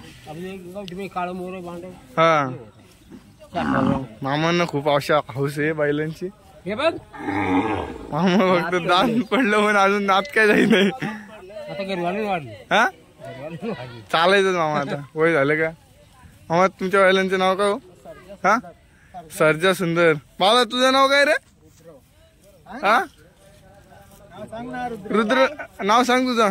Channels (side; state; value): both; identical; correlation 1.00